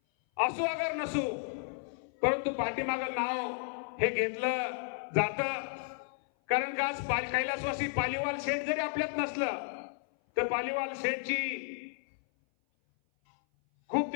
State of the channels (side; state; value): right; silent; 56 dB below the other